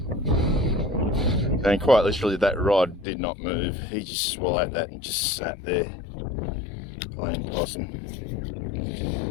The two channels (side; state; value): right; drops out; at 3.1 s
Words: And quite literally, that rod did not move. He just swallowed that and just sat there playing possum.